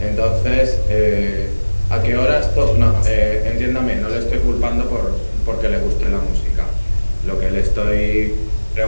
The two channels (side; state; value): both; inverted; correlation -1.00